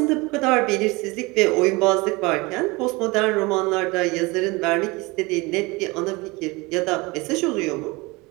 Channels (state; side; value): quieter; left; 24.4 dB